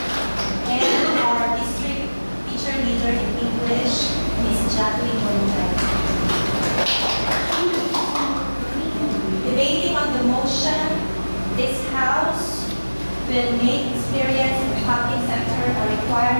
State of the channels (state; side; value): inverted; both; correlation -1.00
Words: And our district teacher leader in English, Ms. Jacqueline Molina. Debating on the motion, this House will make experience in the public sector a